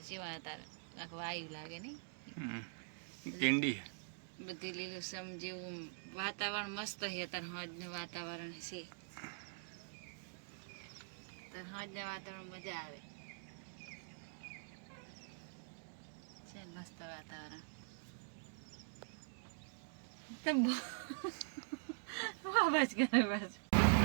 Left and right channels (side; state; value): left; silent; digital silence